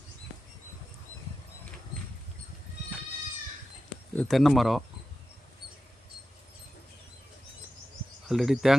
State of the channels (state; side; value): normal; both; correlation 0.92